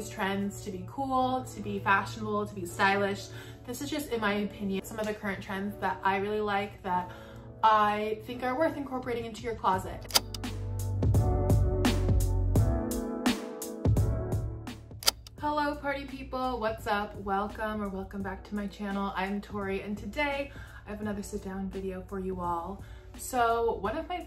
trends to be cool, to be fashionable, to be stylish. This is just, in my opinion, some of the current trends that I really like that I think are worth incorporating into your closet. Hello party people, what's up? Welcome back to my channel. I'm Tori, and today I have another sit down video for you all. So one of my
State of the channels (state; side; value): identical; both; correlation 1.00